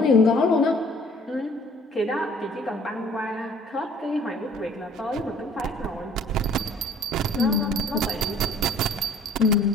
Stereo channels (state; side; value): normal; both; correlation 0.54